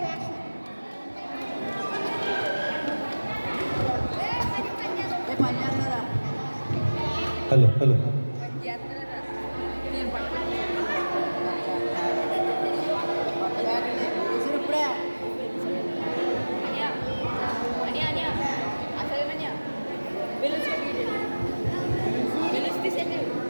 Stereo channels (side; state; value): both; inverted; correlation -1.00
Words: వేషం. Hello hello